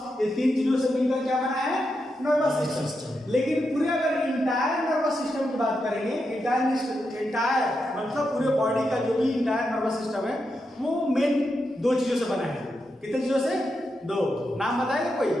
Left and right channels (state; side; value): normal; both; correlation 0.85